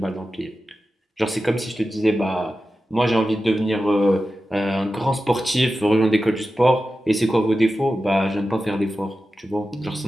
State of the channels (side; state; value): both; normal; correlation 0.92